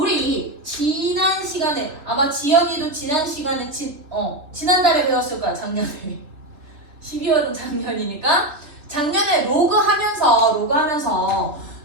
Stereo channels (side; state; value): left; late; 3.2 ms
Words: 지난 시간에 아마 지연이도 지난 시간에 지난달에 배웠을 거야. 작년에 12월은 작년이니까 작년에 로그 하면서